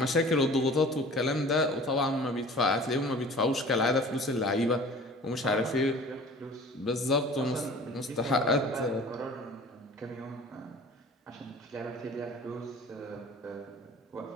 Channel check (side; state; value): both; normal; correlation 0.44